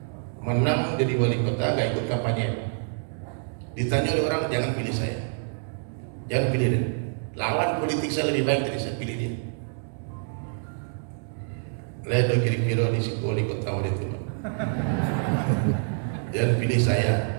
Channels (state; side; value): silent; left; digital silence